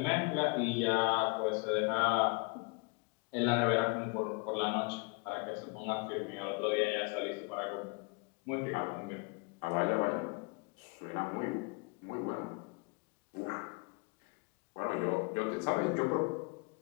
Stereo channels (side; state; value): right; quieter; 31.7 dB